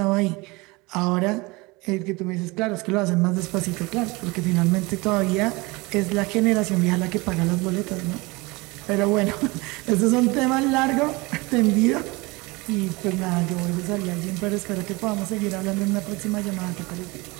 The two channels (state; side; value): quieter; left; 24.3 dB